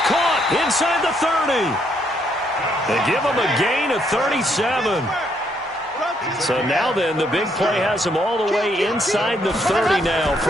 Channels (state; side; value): normal; both; correlation 0.72